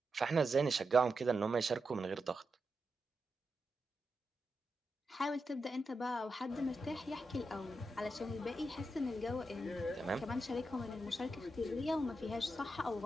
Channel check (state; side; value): normal; both; correlation 0.87